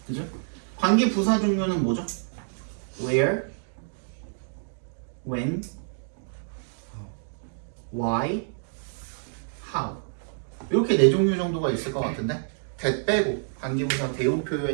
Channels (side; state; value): left; silent; digital silence